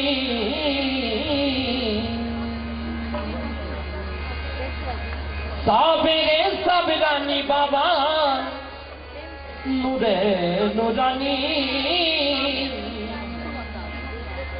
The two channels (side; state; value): right; noise; hum, 26 dB below the sound